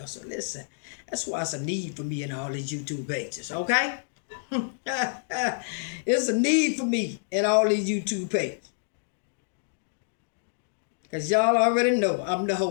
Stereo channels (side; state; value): right; silent; digital silence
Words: So listen, that's why it's a need for me in all these YouTube pages, okay? It's a need for me in all these YouTube pages. Because y'all already know I'm the